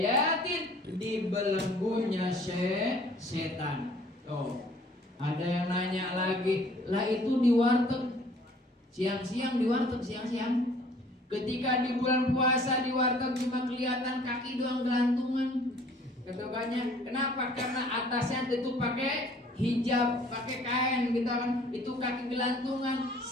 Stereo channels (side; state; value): both; normal; correlation 0.55